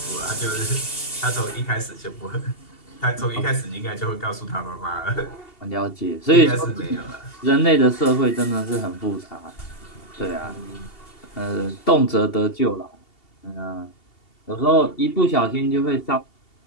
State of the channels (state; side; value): late; right; 2.7 ms